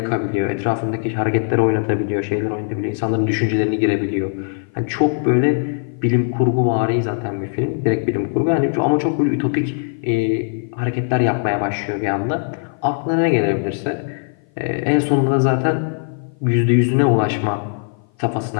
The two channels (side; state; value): right; silent; 56 dB below the other